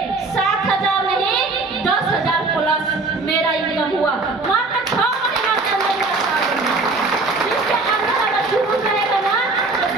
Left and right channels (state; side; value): quieter; left; 3.5 dB